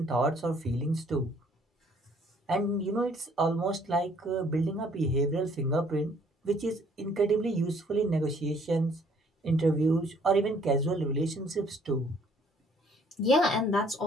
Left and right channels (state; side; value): normal; both; correlation 0.61